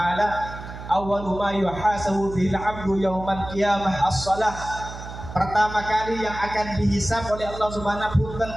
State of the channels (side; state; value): right; noise; hum, 11 dB below the sound